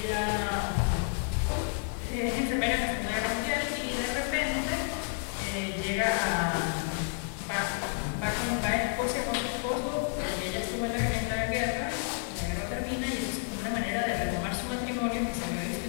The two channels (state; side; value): silent; right; 57 dB below the other